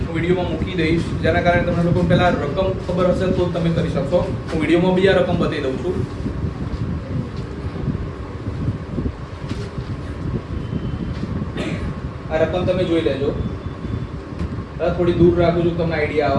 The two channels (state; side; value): identical; both; correlation 1.00